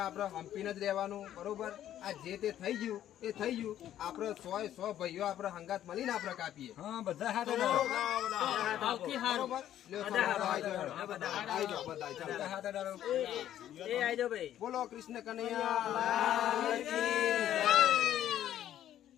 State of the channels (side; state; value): right; quieter; 11.6 dB